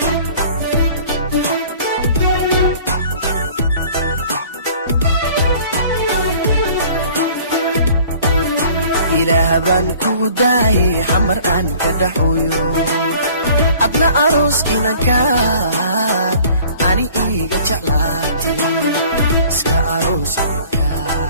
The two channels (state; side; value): inverted; both; correlation -0.50